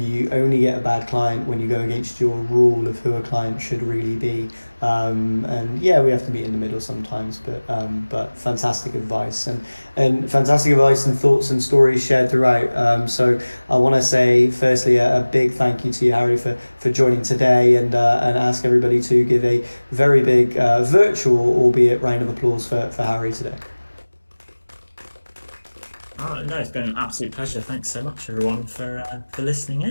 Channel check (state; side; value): inverted; both; correlation -1.00